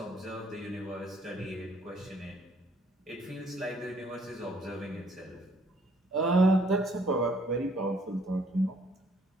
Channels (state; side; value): normal; both; correlation 0.64